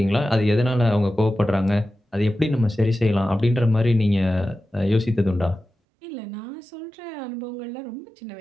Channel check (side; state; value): left; drops out; at 5.7 s